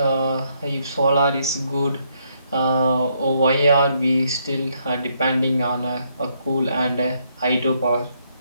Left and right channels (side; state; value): both; inverted; correlation -0.74